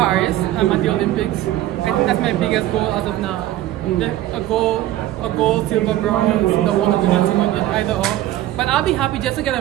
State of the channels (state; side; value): quieter; left; 14.3 dB